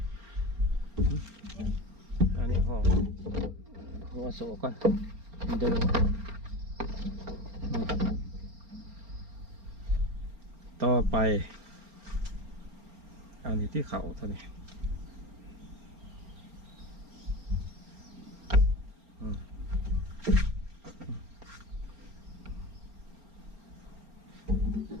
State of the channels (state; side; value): late; left; 4.3 ms